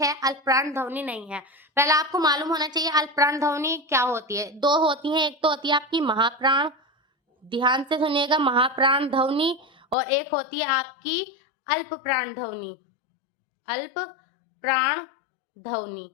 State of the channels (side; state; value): right; drops out; at 10.0 s